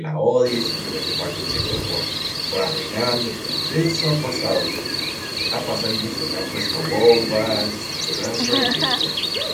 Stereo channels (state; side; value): identical; both; correlation 1.00